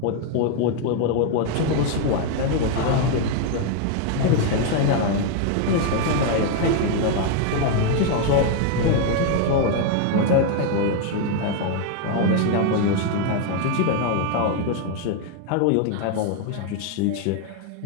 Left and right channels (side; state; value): both; different; correlation 0.01